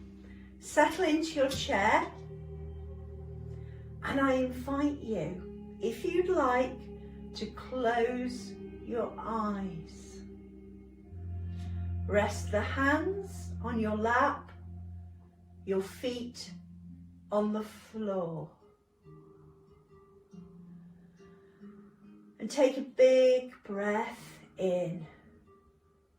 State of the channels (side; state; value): both; identical; correlation 1.00